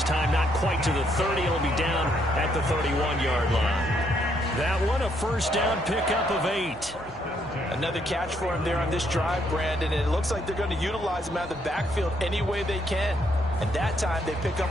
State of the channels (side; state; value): both; normal; correlation 0.72